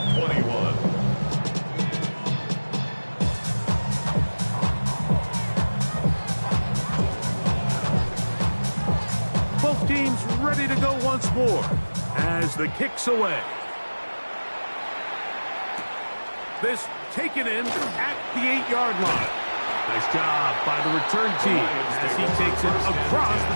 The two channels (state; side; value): inverted; both; correlation -1.00